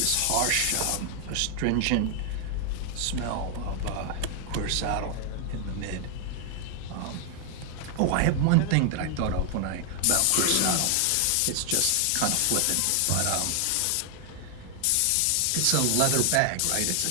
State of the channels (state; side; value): different; both; correlation 0.00